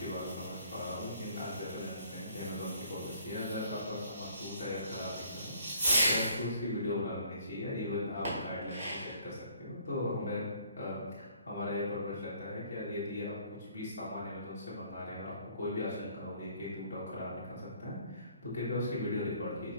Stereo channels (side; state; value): both; inverted; correlation -0.59